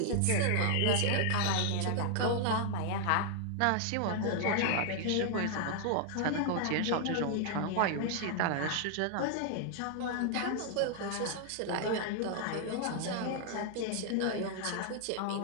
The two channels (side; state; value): both; different; correlation 0.00